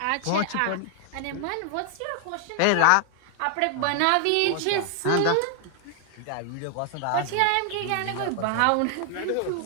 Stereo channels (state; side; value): different; both; correlation 0.00